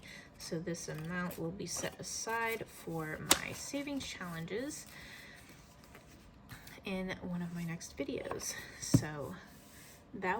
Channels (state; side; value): identical; both; correlation 1.00